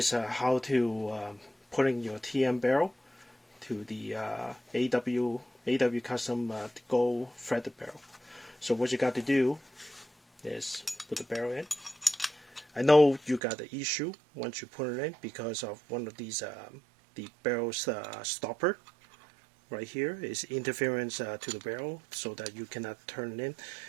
how to put in your TM barrel to the AW custom gold threaded barrel. So what you got to do is put the barrel in. I know you got the issue once you put it in because of one of these the barrel's stopper right here is interference to the barrel, so that you cannot turn it in.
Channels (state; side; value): drops out; left; at 13.4 s